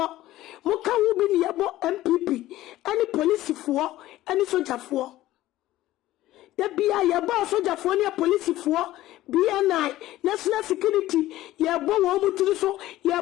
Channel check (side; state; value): right; quieter; 15.5 dB